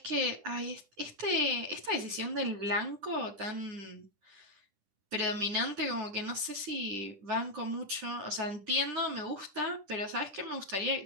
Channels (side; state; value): left; late; 10 ms